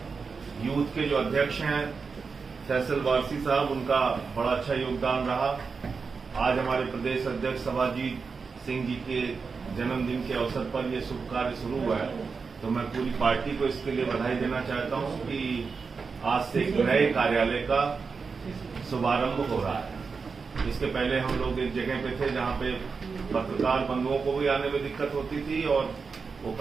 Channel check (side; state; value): left; quieter; 5.0 dB